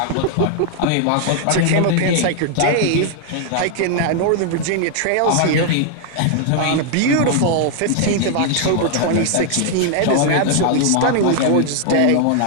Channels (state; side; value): different; both; correlation 0.00